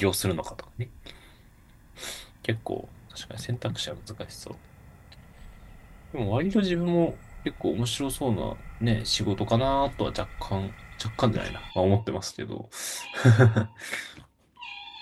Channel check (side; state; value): both; identical; correlation 1.00